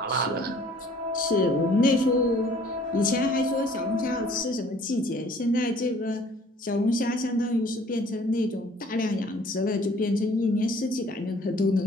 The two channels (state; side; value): normal; both; correlation 0.55